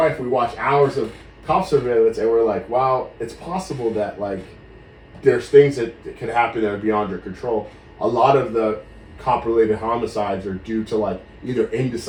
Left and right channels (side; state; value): both; identical; correlation 1.00